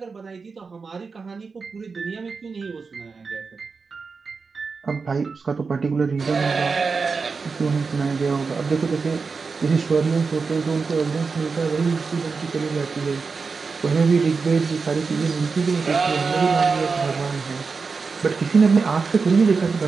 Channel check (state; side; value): quieter; left; 4.8 dB